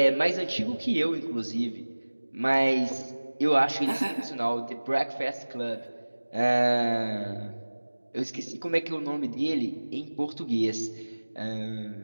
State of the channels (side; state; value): both; inverted; correlation -1.00